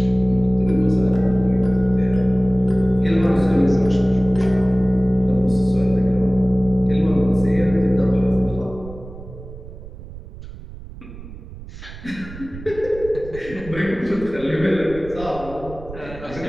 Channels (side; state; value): right; noise; rumble, 15 dB below the sound